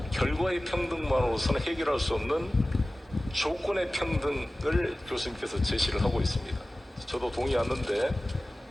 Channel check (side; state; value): both; normal; correlation 0.97